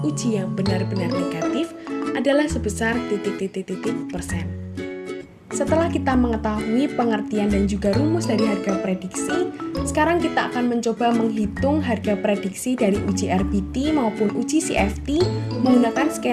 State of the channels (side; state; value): both; identical; correlation 1.00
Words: yang benar-benar negatif adalah sebesar titik-titik persen. Setelah kita mengetahui pengertian dan juga rumus dari harga prediksi, sekarang kita akan mencoba menghitung harga prediksi dari uji RBT maupun uji CFT menggunakan